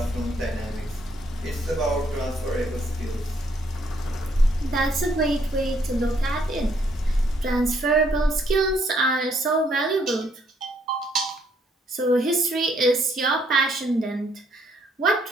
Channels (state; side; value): normal; both; correlation 0.69